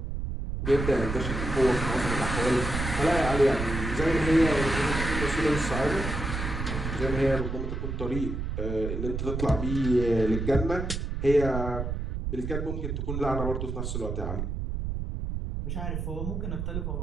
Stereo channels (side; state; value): right; noise; rumble, 3 dB below the sound